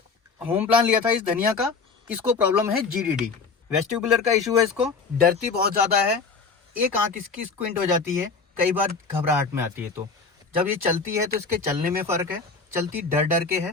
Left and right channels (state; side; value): quieter; right; 4.7 dB